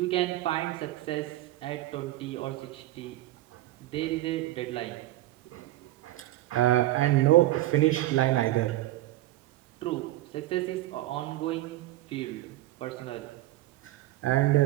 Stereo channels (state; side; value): quieter; left; 16.1 dB